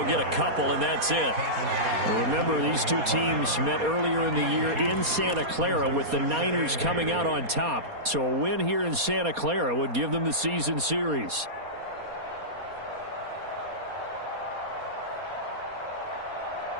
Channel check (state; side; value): late; left; 4.2 ms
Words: get a couple, and that's it. Remember, these two teams met earlier in the year in Santa Clara with the Niners coming out on top. So a win here in Santa Clara would give them the season series.